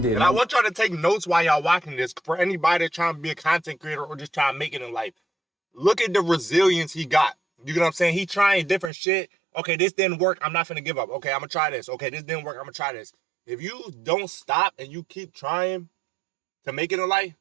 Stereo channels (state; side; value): drops out; left; at 8.9 s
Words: did. And I want y'all to take notes while y'all watching this. For anybody that's trying to be a content creator or just trying to make it in life, look at the resilience he got. You get what I'm saying? He trying different shit. Okay, this didn't work. I'm not finna give up. Okay, I'm gonna try this. Okay, this didn't work. I'm gonna try this. If you don't stop and you keep trying to make it in life,